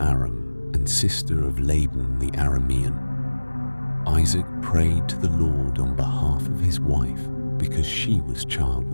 and sister of Laban the Aramean. Isaac prayed to the Lord on behalf of his wife because she was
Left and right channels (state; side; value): inverted; both; correlation -1.00